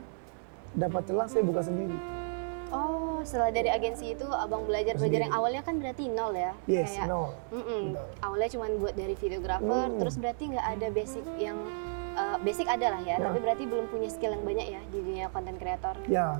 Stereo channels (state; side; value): silent; left; 56 dB below the other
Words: dapat celah saya buka sendiri. Oh, setelah dari agensi itu Abang belajar yang awalnya kan berarti nol ya? Yes, kayak, nol. Awalnya cuma buat dari videographer, terus berarti nggak ada basic yang, basic ada lah ya, tapi berarti belum punya skill yang banyak ya di dunia konten kreator.